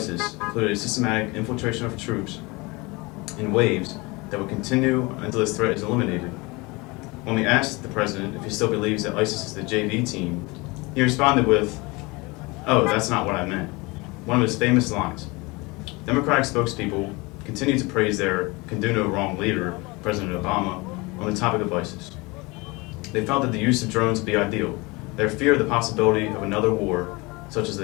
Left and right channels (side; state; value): right; quieter; 25.1 dB